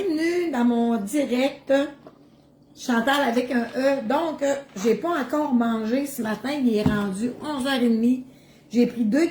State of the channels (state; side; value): identical; both; correlation 1.00